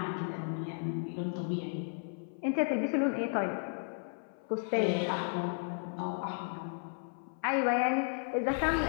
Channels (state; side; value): silent; right; 55 dB below the other